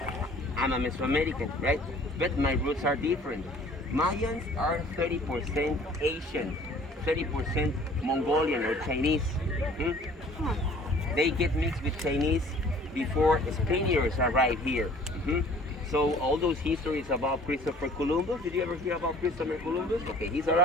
I'm a Mesoamerican, right? But my roots are different. Mayans are 30% Asian, 30% Mongolian or Chinese. They get mixed with Chinese before Spaniards arrive here. So all those histories about Christopher Columbus, did you ever hear about Christopher Columbus? Okay, he's a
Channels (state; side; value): normal; both; correlation 0.52